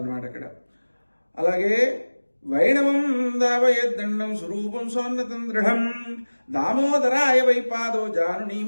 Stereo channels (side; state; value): both; inverted; correlation -1.00